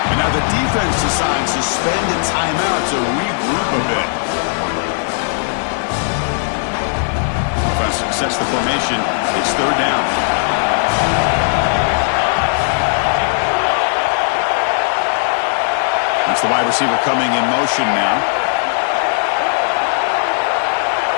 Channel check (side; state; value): right; silent; digital silence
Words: And now the defense decides to spend a timeout to regroup a bit. Offense sets the formation. It's third down. That's the wide receiver coming in motion now.